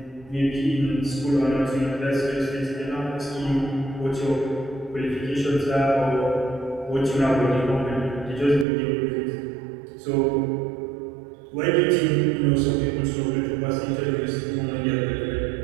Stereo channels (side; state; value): left; drops out; at 8.7 s